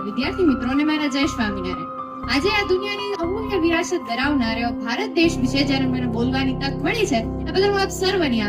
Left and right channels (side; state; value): both; identical; correlation 1.00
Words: વિદ્યાર્થી મિત્રોને મારા જય સ્વામિનારાયણ. આજે આ દુનિયાની અમૂલ્ય વિરાસત ધરાવનાર એવો ભારત દેશ વિશે જ્યારે મને બોલવાની તક મળી છે એ બદલ હું આપ સર્વની